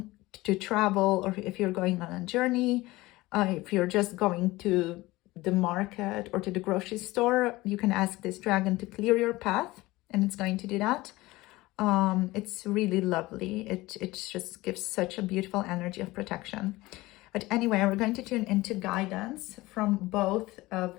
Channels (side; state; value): right; quieter; 19.6 dB